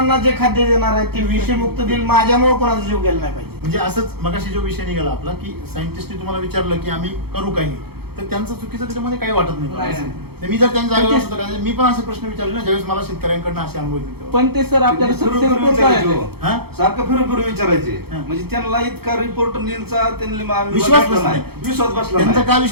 जे खाद्य देणार आहे ते विषमुक्त देईल माझ्यामुळे कोणाचा जीव गेला नाही पाहिजे. म्हणजे असंच मगाशी जो विषय निघाला आपला की सायंटिस्टने तुम्हाला विचारलं की आम्ही करू काही तर त्यांचं चुकीचं त्याच्यामध्ये काही वाटत नाही. तर मी जर त्यांच्या जागेवर असतो तर मी पण असे प्रश्न विचारले ना ज्यावेळेस मला शेतकऱ्यांकडनं असे अनुभव येतील. पण ते सर आपल्याला फिरून success फिरून होत विचारायचे आहे. हो. हा? सारखं फिरून फिरून विचारायचे हा. म्हणजे त्यांना इतका रिपोर्ट नीलचा त्यांनी आम्ही विश्वास बघितला बसला नाही. विश्वास बसला त्यांचा नाही. का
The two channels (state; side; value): late; left; 0.96 ms